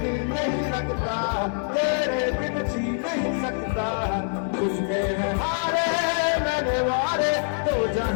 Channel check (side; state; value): right; silent; 62 dB below the other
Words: नहीं लगता, तेरे बिन जी नहीं सकता, तुझमें है हारे मैंने वारे तो